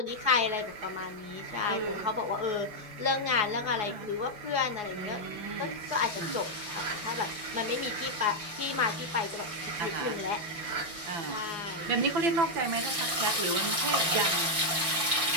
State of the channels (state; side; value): late; left; 5.7 ms